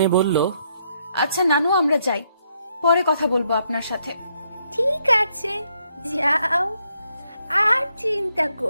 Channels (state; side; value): inverted; both; correlation -0.75